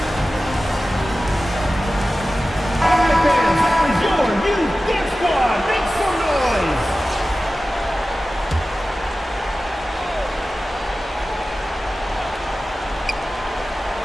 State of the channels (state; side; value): normal; both; correlation 0.95